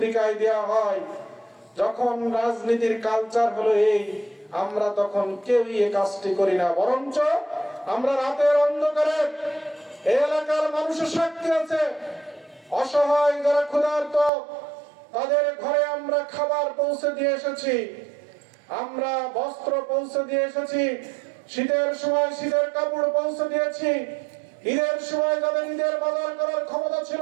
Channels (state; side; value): drops out; left; at 14.3 s